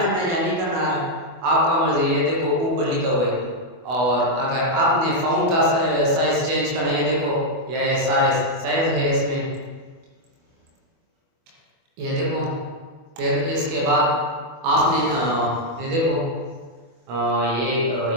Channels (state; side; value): late; left; 24 ms